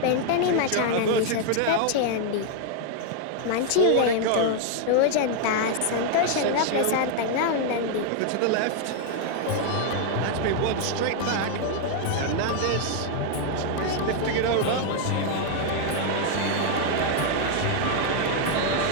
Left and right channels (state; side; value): different; both; correlation 0.00